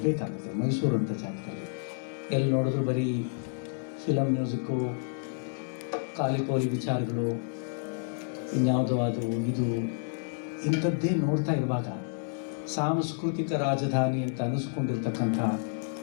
ಮೈಸೂರು ಅಂತ ಜಾಗದಲ್ಲಿ ಎಲ್ಲಿ ನೋಡಿದ್ರು ಬರೀ ಫಿಲಮ್ ಮ್ಯೂಸಿಕ್ಕು, ಕಾಲಿಪೋಲಿ ವಿಚಾರಗಳು, ಇನ್ಯಾವುದೋ ಅದು ಇದು ಇಂಥದ್ದೇ ನೋಡ್ತಾ ಇರುವಾಗ ಸಾಂಸ್ಕೃತಿಕ ರಾಜಧಾನಿ ಅಂತ ಅನ್ನಿಸ್ಕೊಂಡಿರ್ತಕ್ಕಂಥ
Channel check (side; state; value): right; silent; 58 dB below the other